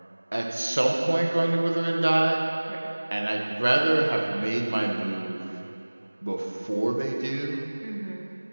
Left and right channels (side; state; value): both; inverted; correlation -1.00